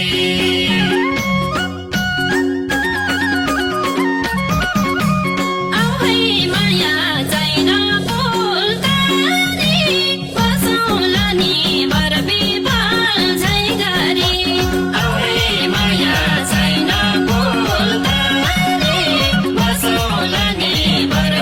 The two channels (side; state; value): both; identical; correlation 1.00